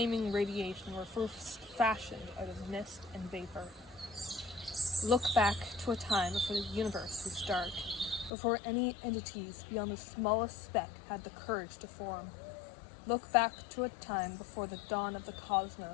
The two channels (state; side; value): drops out; right; at 8.3 s